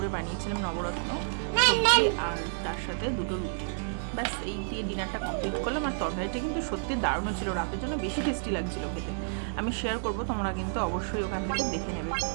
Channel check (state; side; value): silent; left; digital silence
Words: বানিয়েছিলাম নবরত্ন সবজি, আর তার সাথে দুটো রুটি। ব্যাস এই দিয়ে ডিনারটা কমপ্লিট করলাম। আর তরকারিটা কিন্তু সত্যি দারুণ ছিল, রাতের জন্য বেশি টেস্টি লাগছিল খেতে। আমি শেয়ার করব, তোমরা কিন্তু অবশ্যই ওখান থেকে দেখে নেবে,